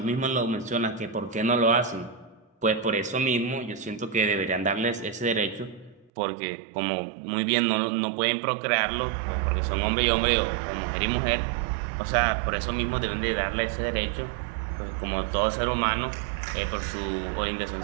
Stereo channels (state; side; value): drops out; left; at 6.1 s